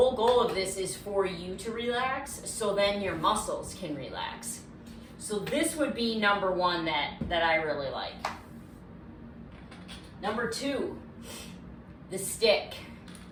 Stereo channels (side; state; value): both; identical; correlation 1.00